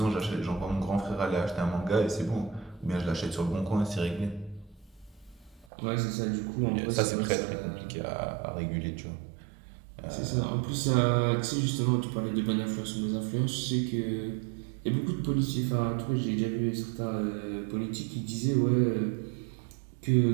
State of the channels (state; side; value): drops out; left; at 5.7 s